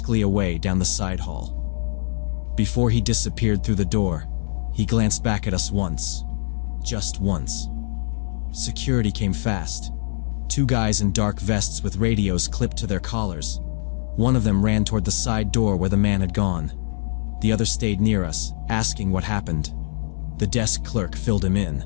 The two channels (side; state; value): right; silent; digital silence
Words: away down the side hall. Before he disappeared through the door, he glanced back at us once. Just once. Security came fast. 2 guys in dark vests with radios clipped to their collars. One of them ran toward the side door where the man had gone. The other stayed near us, asking what happened. The desk clerk filled him in.